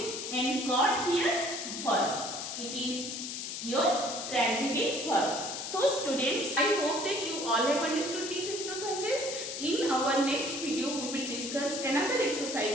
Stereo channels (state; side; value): noise; left; hiss, 6 dB below the sound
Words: and got here verb. It is your transitive verb. So students, I hope that you all have understood these exercises. In our next video, we will discuss another